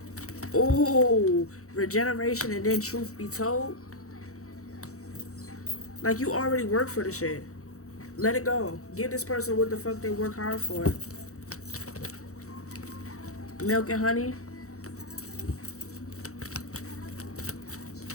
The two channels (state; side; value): late; right; 0.65 ms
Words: Oh, regeneration and then truth be told. Like, you already worked for the shit. Let it go. Give this person what the fuck they work hard for. Milk and honey.